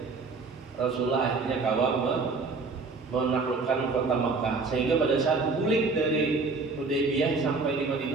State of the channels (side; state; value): left; quieter; 4.1 dB